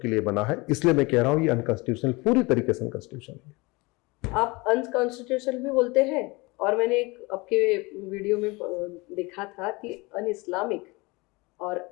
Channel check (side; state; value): right; quieter; 25.0 dB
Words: के लिए बना है, इसलिए मैं कह रहा हूं ये अनकॉन्स्टिट्यूशनल, पूरी तरीके से अनकॉन्स्टिट्यूशनल है। आप अनकॉन्स्टिट्यूशनल भी बोलते हैं, और मैंने एक आपके वीडियो में देखा था कि अन इस्लामिक और